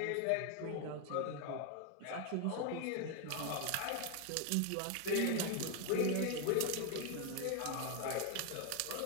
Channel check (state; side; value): different; both; correlation 0.01